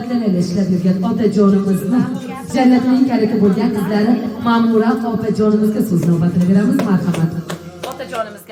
ishlab yurgan otajonimizni jannatning kaliti bo'lgan qizlari Ma'mura opajonimizga so'z navbatini beramiz. Marhamat.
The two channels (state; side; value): identical; both; correlation 1.00